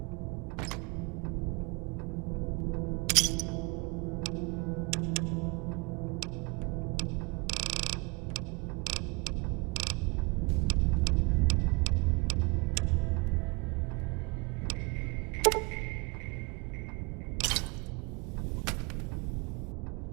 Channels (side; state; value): left; quieter; 28.9 dB